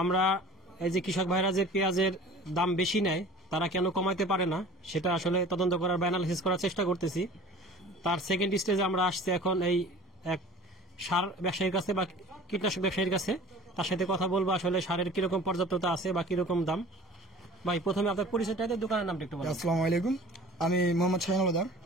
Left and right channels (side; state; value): both; normal; correlation 0.44